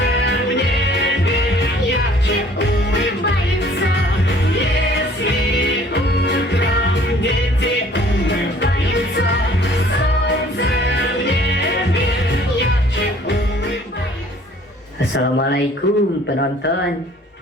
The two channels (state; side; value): normal; both; correlation 0.55